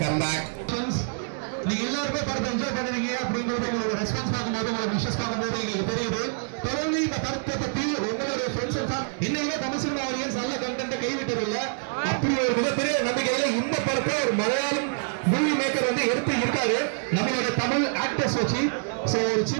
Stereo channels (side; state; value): left; silent; digital silence